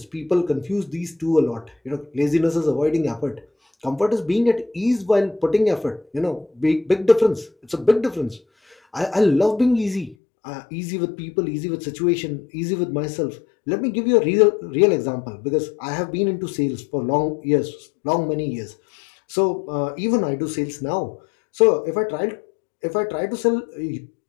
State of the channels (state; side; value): drops out; right; at 10.2 s